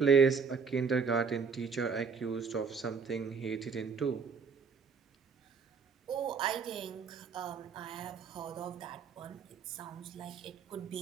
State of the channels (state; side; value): quieter; left; 5.6 dB